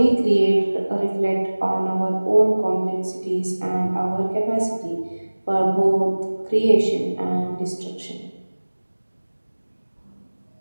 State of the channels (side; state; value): both; inverted; correlation -1.00